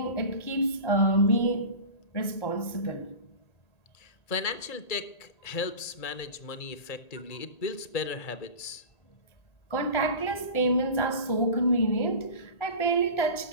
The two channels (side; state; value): right; late; 1.8 ms